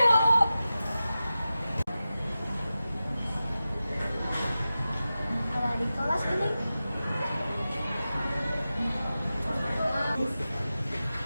Ada di kelas ini.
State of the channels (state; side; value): inverted; both; correlation -0.94